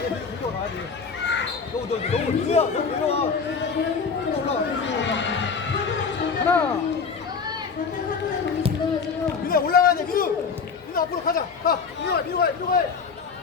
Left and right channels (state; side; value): quieter; right; 5.5 dB